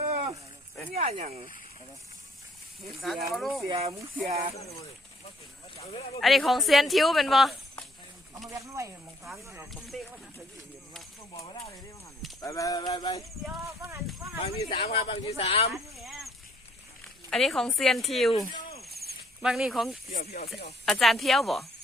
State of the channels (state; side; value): normal; both; correlation 0.64